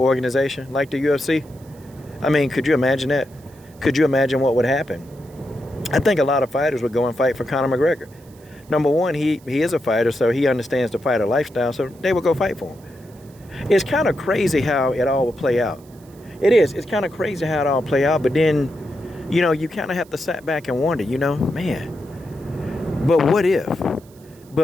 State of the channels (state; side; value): noise; right; hiss, 28 dB below the sound